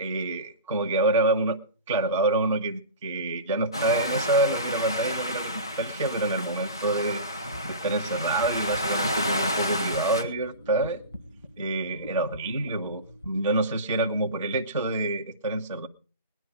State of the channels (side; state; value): both; inverted; correlation -0.32